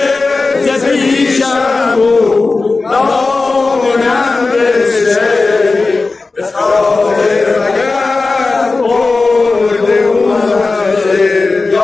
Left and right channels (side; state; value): right; quieter; 3.7 dB